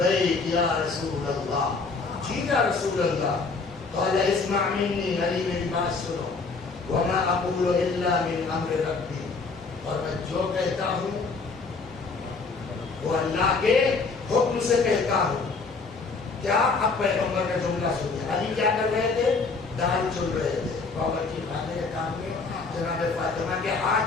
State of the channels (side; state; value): right; quieter; 4.3 dB